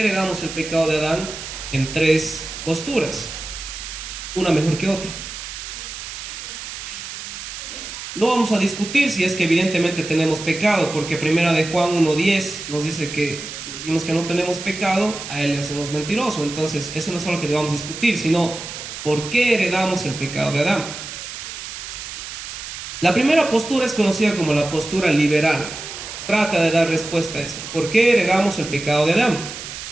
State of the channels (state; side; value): noise; right; hiss, 9 dB below the sound